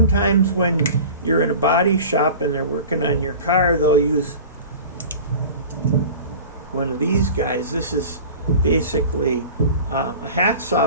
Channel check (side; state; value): both; inverted; correlation -0.38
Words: when you're in a body shop and they're working on your car, they'll use one of these guys. This is basically a